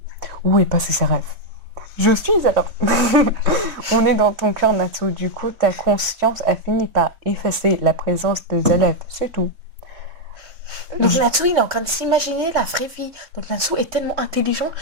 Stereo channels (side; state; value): left; late; 3.2 ms